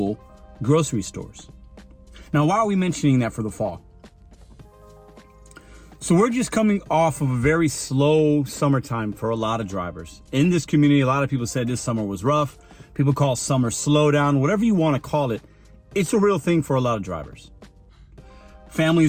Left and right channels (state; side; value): identical; both; correlation 1.00